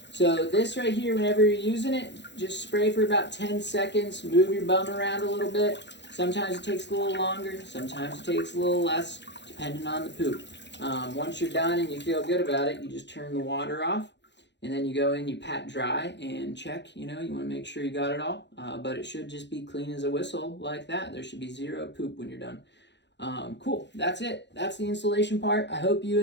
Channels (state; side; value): late; right; 0.51 ms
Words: So this right here, whenever you're using it, just spray for about 10 seconds. Move your bum around a little bit. Sometimes it takes a little longer. Sometimes it takes a little less, depending on the poop. Once you're done and you feel good about it, you just turn the water off. And then you go in, you pat dry and check. You know, you want to make sure you got it all. But it should just be clean as a whistle like that. There should be zero poop when you're done. Cool. That's it. That's the installation part. I hope you